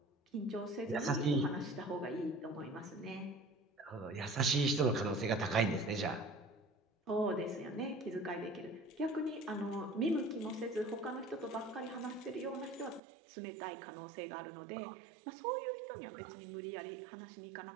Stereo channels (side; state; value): left; drops out; at 13.0 s